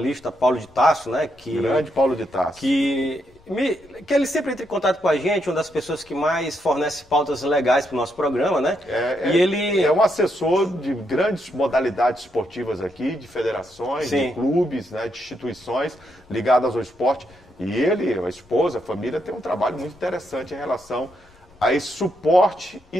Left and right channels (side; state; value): left; noise; rumble, 29 dB below the sound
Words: Paulo de Tasso, né? Grande Paulo de Tasso. Que ele sempre entra em contato com a gente, uma das pessoas que mais fornece pautas legais para o nosso programa, né? Ele é um assessor de grandes modalidades esportivas aqui, de federações, Sim, de clubes, né, de instituições ligadas ao esporte. E ele, a esposa, a família, tem um trabalho muito interessante em relação a esse suporte e